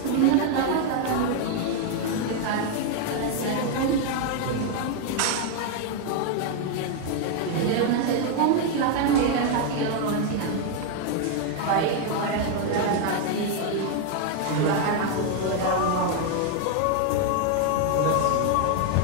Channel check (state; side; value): different; both; correlation 0.01